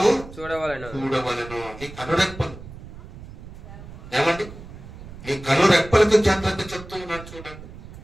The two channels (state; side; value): noise; right; rumble, 15 dB below the sound